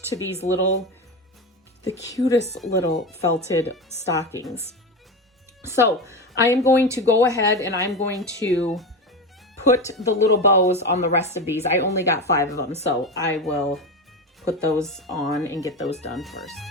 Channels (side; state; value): both; normal; correlation 0.21